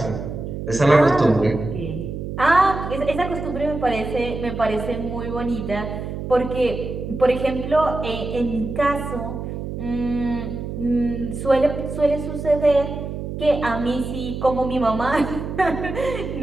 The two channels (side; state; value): right; noise; hum, 6 dB below the sound